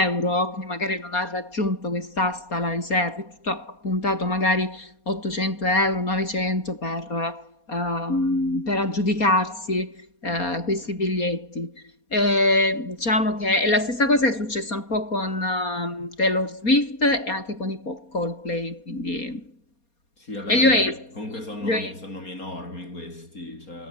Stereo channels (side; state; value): right; late; 4.3 ms